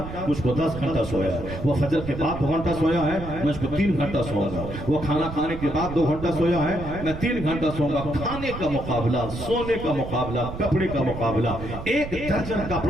مجھ کو 10 گھنٹہ سویا ہے. وہ فجر کے بعد 2 گھنٹہ سویا ہے, مجھ کو 3 گھنٹہ سوؤں گا. وہ کھانا کھانے کے بعد 2 گھنٹہ سویا ہے, میں 3 گھنٹہ سوؤں گا. کھانے کا مقابلہ, سونے کا مقابلہ, کپڑے کا مقابلہ. 1 درجن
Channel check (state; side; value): noise; right; rumble, 9 dB below the sound